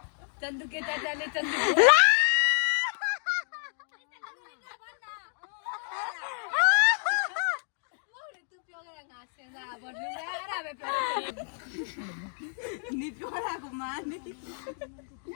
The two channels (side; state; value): right; silent; digital silence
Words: चंदू के चाचा ने चंदू